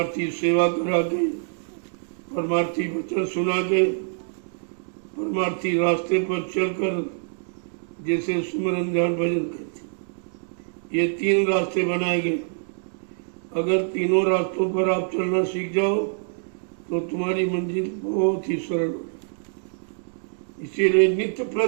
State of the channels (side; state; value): left; silent; digital silence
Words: सेवा करा के, परमार्थी वचन सुना के, परमार्थी रास्ते पर चलकर, जैसे सुमरन ध्यान भजन कहते, ये 3 रास्ते बनाए गए। अगर तीनों रास्तों पर आप चलना सीख जाओ तो तुम्हारी मंजिल बहुत ही सरल हो जाए। इसीलिए नित्य